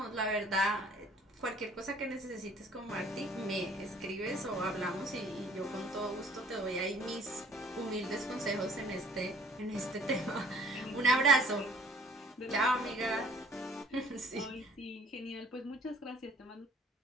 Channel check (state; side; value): normal; both; correlation 0.55